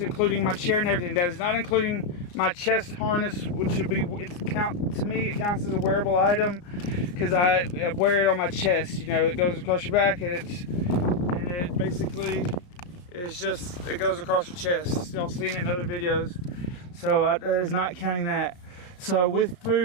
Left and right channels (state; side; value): late; right; 34 ms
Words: including my chair and everything. That is not including my chest harness, which would be, to me it counts as a wearable item, because I wear it on my chest. You know, it goes across your back, and it basically is just, it goes across your chest. Y'all seen it in other videos, so that is not counting that. So with